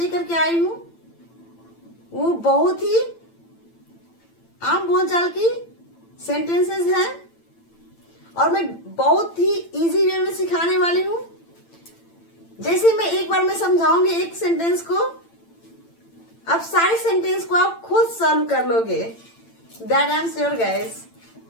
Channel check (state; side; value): late; right; 8.9 ms